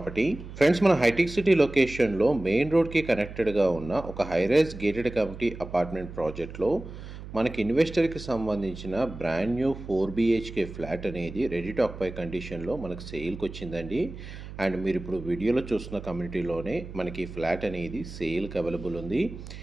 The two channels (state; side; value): noise; right; hum, 12 dB below the sound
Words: Friends, మన hitech city లొకేషన్లో మెయిన్ రోడ్కి కనెక్టెడ్గా ఉన్న ఒక హైరైజ్ గేటెడ్ కమ్యూనిటీ అపార్ట్మెంట్ ప్రాజెక్ట్లో మనకి ఇన్వెస్టర్కి సంబంధించిన బ్రాండ్ న్యూ 4 BHK ఫ్లాట్ అనేది రెడీ టు ఆక్యుపై కండిషన్లో మనకు సేల్కి వచ్చిందండి. అండ్ మీరు ఇప్పుడు వీడియోలో చూస్తున్న కమ్యూనిటీలోనే మనకి ఫ్లాట్ అనేది సేల్కి అవైలబుల్ ఉంది.